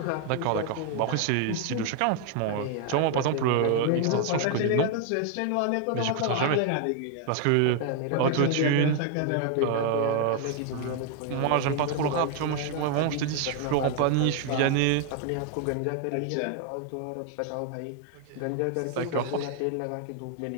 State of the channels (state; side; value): different; both; correlation 0.00